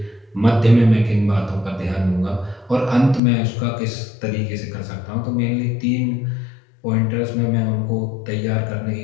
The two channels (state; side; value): drops out; right; at 3.2 s